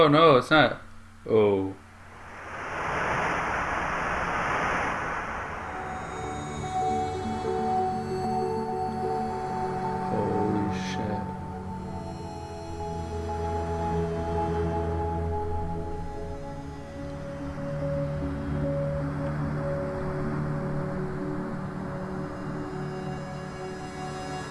no, it's not. Oh.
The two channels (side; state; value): both; identical; correlation 1.00